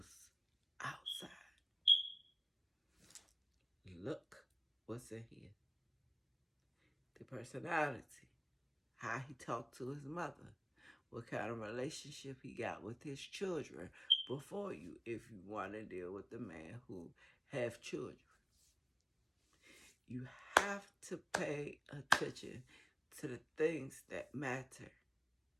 outside. Look what's in here. The personality. How he talked to his mother. What kind of relationship he got with his children before you, if you want to deal with the man who have children. You have to pay attention to the things that matter.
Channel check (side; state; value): both; identical; correlation 1.00